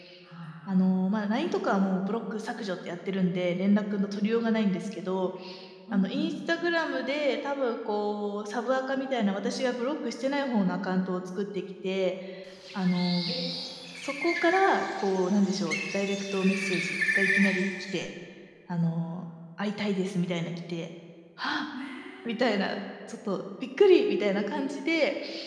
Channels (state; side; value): identical; both; correlation 1.00